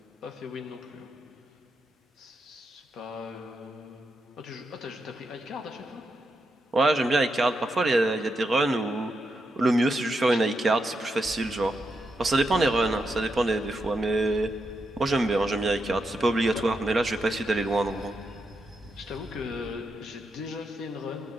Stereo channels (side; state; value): both; normal; correlation 0.84